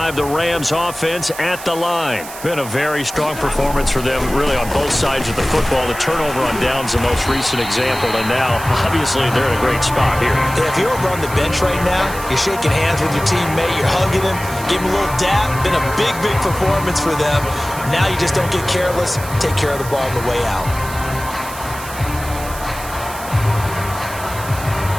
the Rams offense at the line. Been a very strong performance for them, really, on both sides of the football. The turnover on downs, the most recent example, and now, obviously, they're in a great spot here. Yeah, if you're over on the bench right now, you're shaking hands with your teammate, you're hugging him, give him a little dap. Been a big, big performance for them. Now you just don't get careless. Take care of the ball on the way out.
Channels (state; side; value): noise; right; hiss, 13 dB below the sound